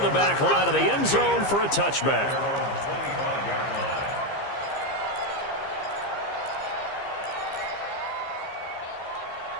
the back line of the end zone for a touchback. 25-yard line.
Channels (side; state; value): right; late; 15 ms